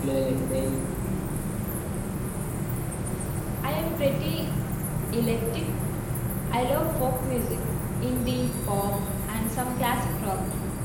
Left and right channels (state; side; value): identical; both; correlation 1.00